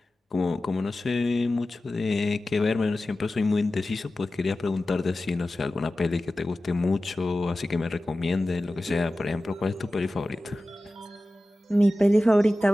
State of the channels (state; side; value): normal; both; correlation 0.95